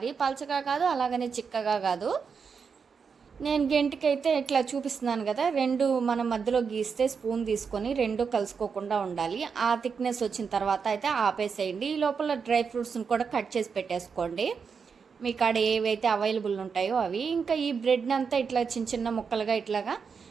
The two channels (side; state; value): left; quieter; 5.9 dB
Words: పలచగా కాదు, అలాగనే చిక్కగా కాదు. నేను గెంటికైతే ఇట్లా చూపిస్తున్నాను కదా, రెండు మనం మధ్యలో గీస్తే స్పూన్ తీసుకొని రెండు కలుసుకోకుండా ఉండాలి. ఆ థిక్నెస్ వచ్చిన తర్వాత అయితే ఆపేసేయండి. ఈ లోపల డ్రై ఫ్రూట్స్ని కూడా కట్ చేసి పెట్టేసుకోండి, మీ కాడ ఏవైతే అవైలబుల్ ఉంటాయో అవి. ఇంకా ఈ బ్రెడ్ని అంతా ఇట్లా చిన్న చిన్న ముక్కలుగా ఇట్లాగా